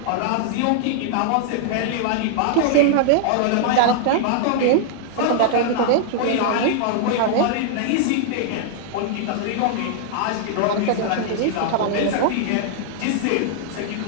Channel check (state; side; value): different; both; correlation -0.01